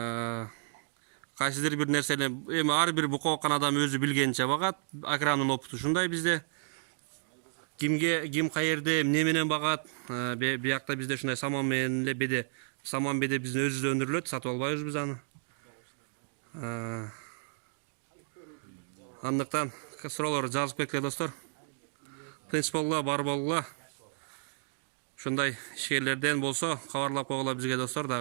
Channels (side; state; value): left; silent; digital silence